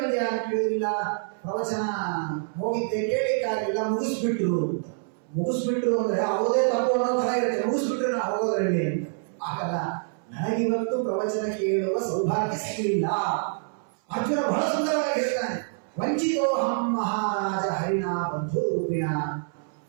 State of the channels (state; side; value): silent; left; 61 dB below the other